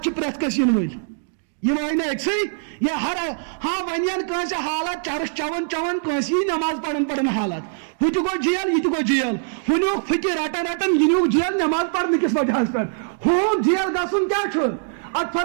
چھِ پرٛٮ۪تھ کٲنٛسہِ یِنہٕ وٲلۍ یہِ وٲے نہٕ أکسٕے یہِ ہر ہاں وۄنۍ یِن کٲنٛسہِ حالات چرس چٮ۪وان کٲنٛسہِ یی نٮ۪ماز پران حالات ہُہ تہِ گوٚو جیل یہِ تہِ گوٚو جیل ہُہ نیوٗکھ پھٕکہِ رٹان یہِ نیوٗکھ جیل نٮ۪ماز پرنہٕ کِس وجہس پٮ۪ٹھ ہُہ جیل گژھُن کیٛاہ چھُ اتھ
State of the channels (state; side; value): silent; left; digital silence